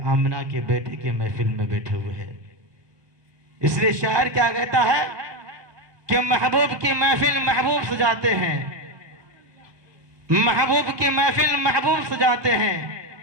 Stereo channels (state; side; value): late; left; 1.2 ms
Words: آمنہ کے بیٹے کے محفل میں بیٹھے ہوئے ہیں۔ اس لیے شاعر کیا کہتا ہے کہ محبوب کی محفل محبوب سجاتے ہیں، محبوب کی محفل محبوب سجاتے ہیں،